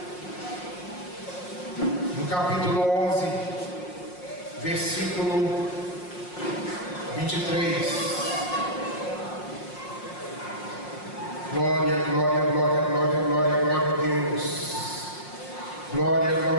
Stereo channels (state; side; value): late; right; 5.6 ms